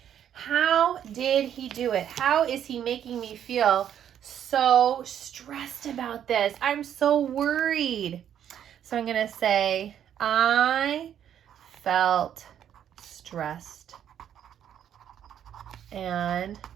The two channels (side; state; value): left; quieter; 9.7 dB